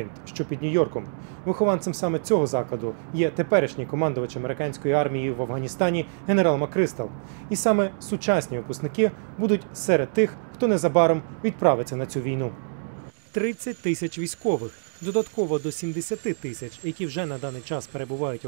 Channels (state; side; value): silent; left; digital silence